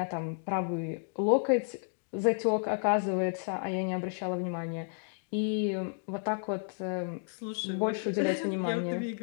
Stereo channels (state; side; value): silent; right; digital silence